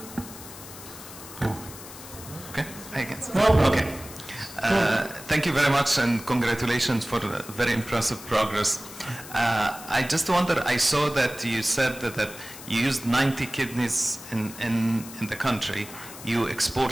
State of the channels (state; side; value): noise; left; hiss, 15 dB below the sound